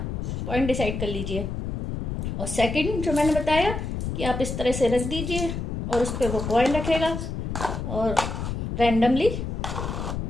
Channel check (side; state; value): left; noise; rumble, 4 dB below the sound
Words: पॉइंट डिसाइड कर लीजिए। और सेकंड जो मैंने बताया कि आप इस तरह से रख दीजिए और उस पर वो कॉइन रखेगा और रैंडमली,